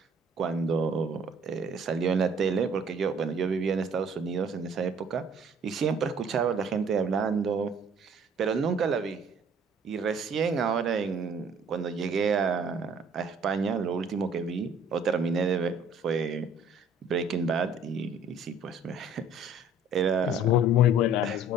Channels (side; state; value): both; normal; correlation 0.54